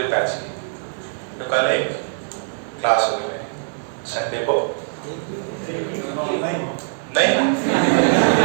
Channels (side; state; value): left; silent; digital silence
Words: बैच की. तो कल एक क्लास होगी मेरी संडे को. नहीं